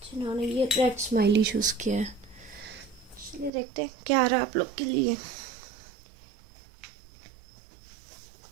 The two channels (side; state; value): left; drops out; at 3.5 s